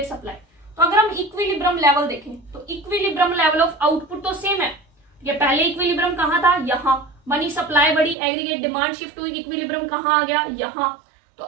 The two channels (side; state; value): left; drops out; at 8.2 s